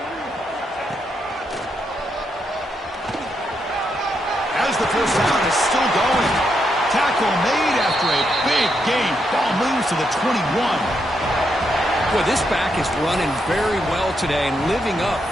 As the first down is still going. Tackle made after after a big gain. Ball moves to the 21. Well, this back is running very well today and living up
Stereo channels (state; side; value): normal; both; correlation 0.80